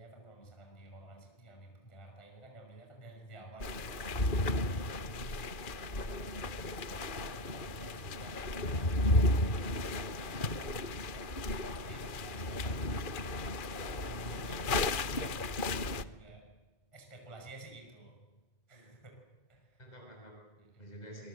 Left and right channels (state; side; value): late; right; 2.4 ms